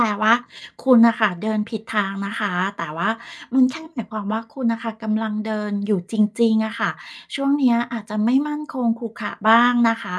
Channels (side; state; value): both; identical; correlation 1.00